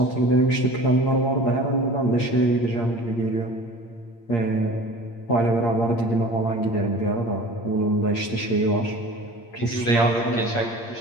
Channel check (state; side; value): late; right; 8.7 ms